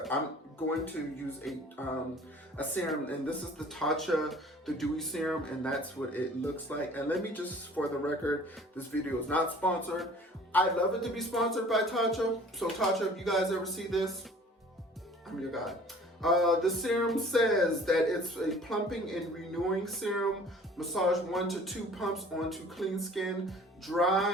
I'm going to use a serum, and this is the Tatcha, the Dewy serum, and that's what it looks like. And let me just, for the record, this video is not sponsored. I'd love it to be sponsored by Tatcha. So Tatcha, if you guys ever see this, I'm your guy. The serum says that it's a plumping and renewing serum. Massage 1 to 2 pumps onto clean skin,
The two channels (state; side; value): normal; both; correlation 0.49